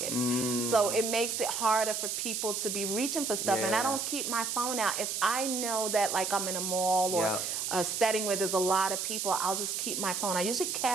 So it makes it harder for people to be reaching for stuff. And I Yeah. don't keep my phone out. If I know that like I'm in a mall or Yeah. a setting where there's a lot of people, I'll just keep my phone. I usually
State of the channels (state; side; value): noise; right; hiss, 2 dB below the sound